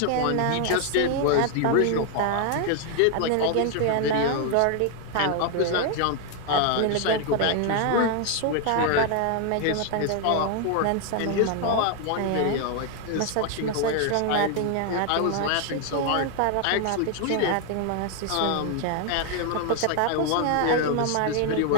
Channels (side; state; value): both; different; correlation 0.00